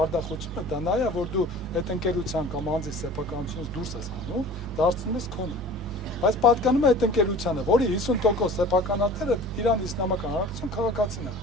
դա նա է, որ դու այդ ընկերության կամ անձի սեփականությունից դուրս ես հանում, դարձնում ես քոնը։ Բայց պատկանում է այդ ընկերությանը, որի 50% սեփականատերը Իրանի Իսլամական Հանրապետության քաղաքացին է։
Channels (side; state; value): both; normal; correlation 0.42